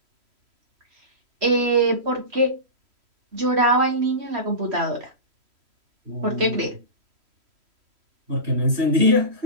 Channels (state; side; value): late; left; 3.1 ms